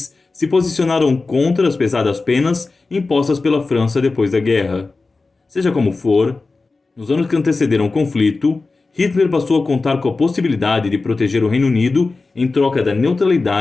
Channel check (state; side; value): quieter; right; 3.7 dB